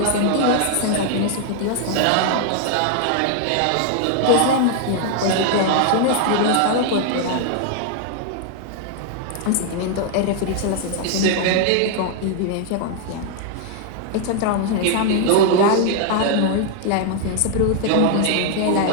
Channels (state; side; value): different; both; correlation 0.00